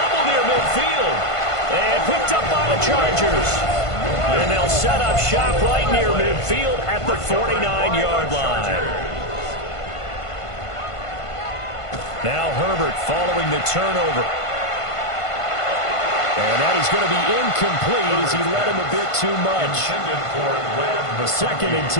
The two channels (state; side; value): late; right; 1.5 ms